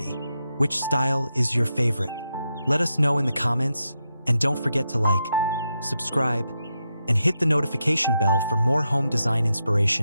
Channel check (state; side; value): inverted; both; correlation -0.85